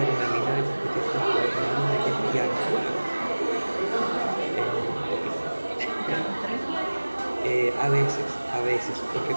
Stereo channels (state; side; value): inverted; both; correlation -1.00